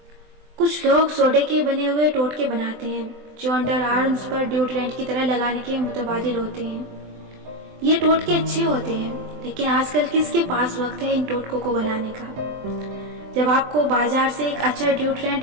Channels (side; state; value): left; late; 24 ms